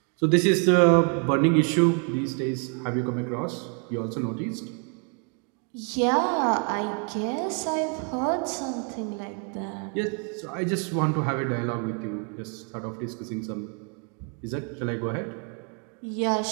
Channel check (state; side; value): quieter; left; 39.6 dB